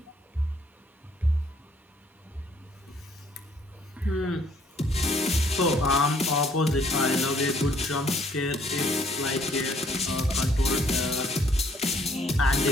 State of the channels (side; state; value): both; normal; correlation 0.64